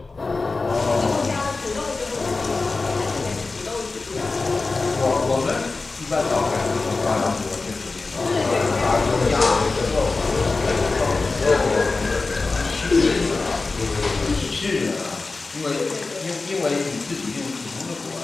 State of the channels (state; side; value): quieter; right; 3.8 dB